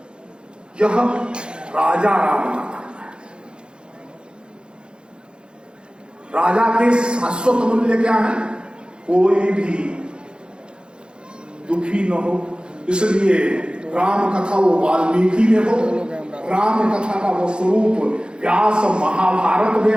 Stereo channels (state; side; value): late; left; 0.052 ms